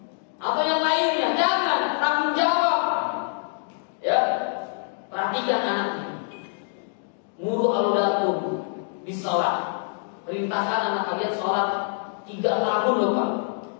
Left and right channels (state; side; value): silent; right; 62 dB below the other